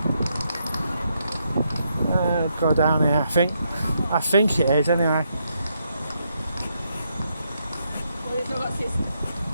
go down here. I think it is anyway.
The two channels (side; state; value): both; inverted; correlation -0.78